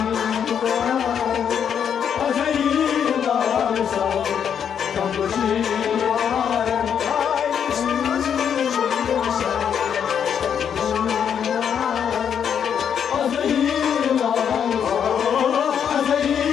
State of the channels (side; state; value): right; quieter; 8.1 dB